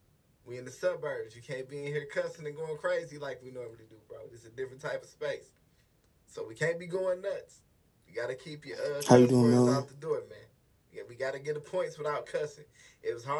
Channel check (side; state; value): both; identical; correlation 1.00